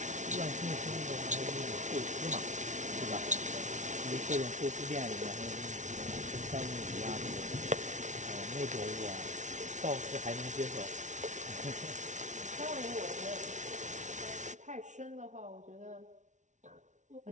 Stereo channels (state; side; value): late; left; 0.36 ms